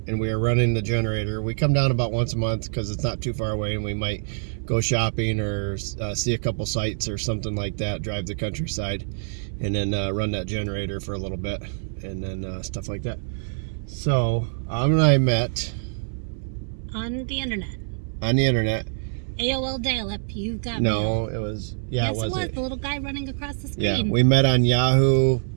and we are running the generator. We come down about once a month because it's not too far away, and we might go shopping or see a couple sites or something like that, drive the countryside, and then run that generator for a little bit, and then stuff like that. So, and I met on the internet. AOL dial-up, you got me. No, it was, yeah, yes, it was the little guy running across the screen. Yeah, we met on Yahoo.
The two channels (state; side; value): silent; left; 62 dB below the other